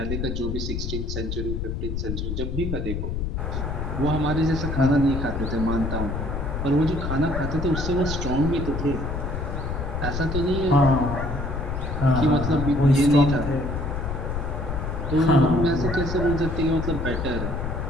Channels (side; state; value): left; noise; rumble, 3 dB below the sound